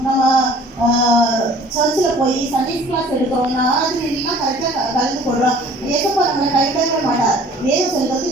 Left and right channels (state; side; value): normal; both; correlation 0.51